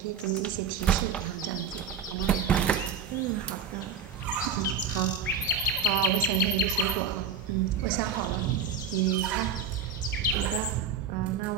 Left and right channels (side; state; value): left; quieter; 6.0 dB